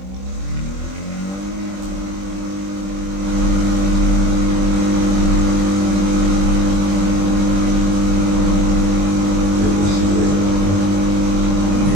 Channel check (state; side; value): late; left; 21 ms